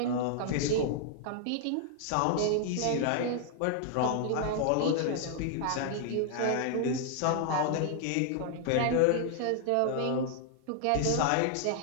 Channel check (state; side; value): different; both; correlation -0.01